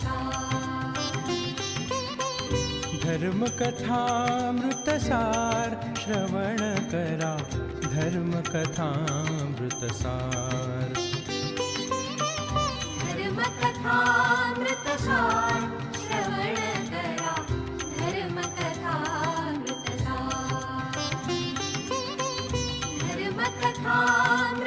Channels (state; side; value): identical; both; correlation 1.00